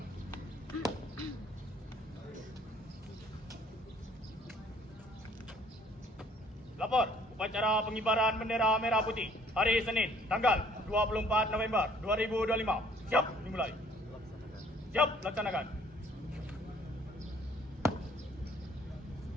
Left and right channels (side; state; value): both; normal; correlation 0.59